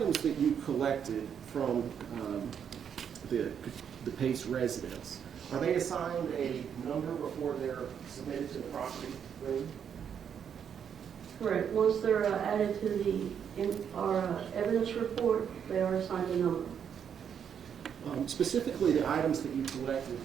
that you collected from the Pace residence, are they assigned a number before they're submitted to the property room? Correct. Once they're added to our evidence report, they are assigned a number. Specifically, the items that you collected,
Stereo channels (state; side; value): quieter; left; 8.0 dB